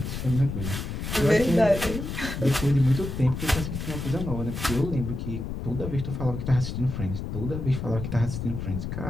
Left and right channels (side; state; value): left; noise; rumble, 5 dB below the sound